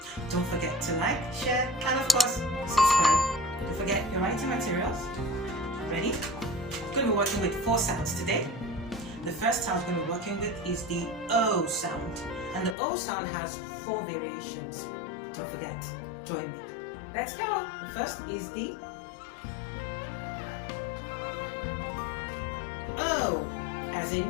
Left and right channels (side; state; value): right; drops out; at 12.8 s